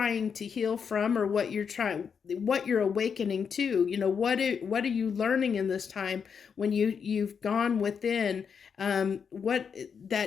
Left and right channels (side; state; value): right; quieter; 6.6 dB